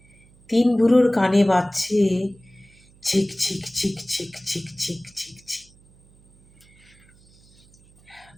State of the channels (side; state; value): right; noise; hum, 29 dB below the sound